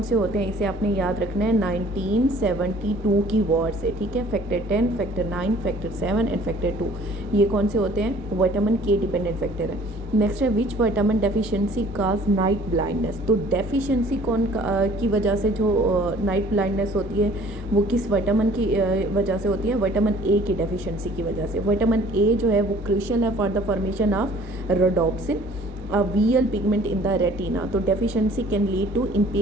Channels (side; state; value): both; normal; correlation 0.53